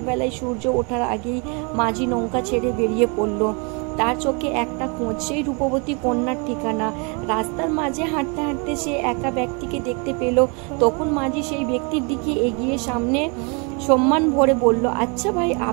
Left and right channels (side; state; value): left; quieter; 33.5 dB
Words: সূর্য ওঠার আগেই মাঝি নৌকা ছেড়ে বেরিয়ে পড়ল। তার চোখে একটা খোঁজ, সেই রূপবতী কন্যার ঠিকানা। রাস্তার মাঝে হাঁটতে হাঁটতে সে একা ব্যক্তিকে দেখতে পেল। তখন মাঝি সেই ব্যক্তির দিকে এগিয়ে সামনে সম্মান ভরে বলল, আচ্ছা ভাই,